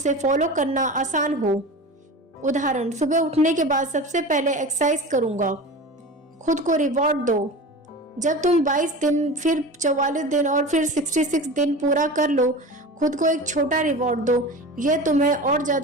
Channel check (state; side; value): normal; both; correlation 0.32